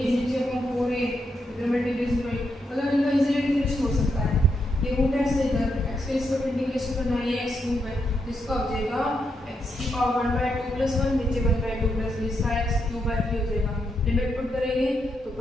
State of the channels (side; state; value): both; normal; correlation 0.81